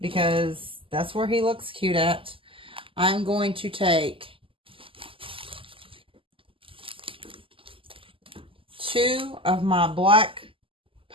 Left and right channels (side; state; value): left; late; 0.25 ms